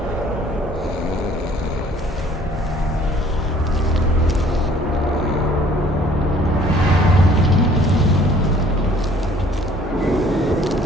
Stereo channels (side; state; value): both; normal; correlation 0.57